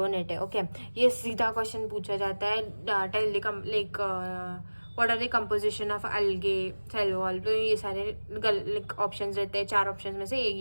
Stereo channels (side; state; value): both; inverted; correlation -1.00